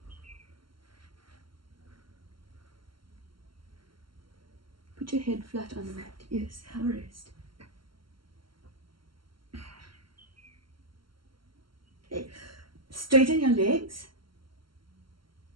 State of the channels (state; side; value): late; left; 0.73 ms